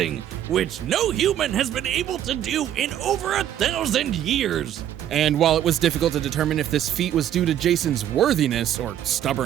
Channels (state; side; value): quieter; left; 10.9 dB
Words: which no human has been able to do in over 1,000 years. And while it was difficult to determine if this feat was due to Jason's worthiness or